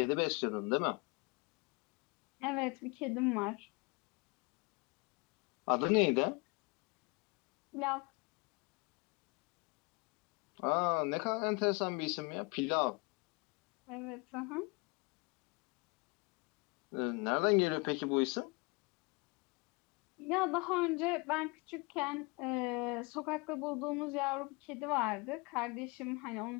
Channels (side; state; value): right; quieter; 28.5 dB